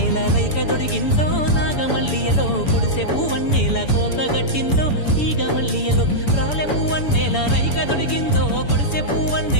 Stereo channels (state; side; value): late; right; 6.9 ms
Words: రైక దొడిగిందో నాగమల్లియలో గుడిసె పూవన్నేల కోక గట్టిందో తీగ మల్లియలో రాలె పూవన్నేల రైక దొడిగిందో గుడిసె